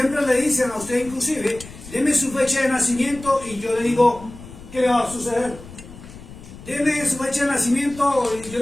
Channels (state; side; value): noise; left; rumble, 16 dB below the sound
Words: le dicen a usted inclusive, deme su fecha de nacimiento y yo le digo qué le va a suceder. Deme su fecha de nacimiento y yo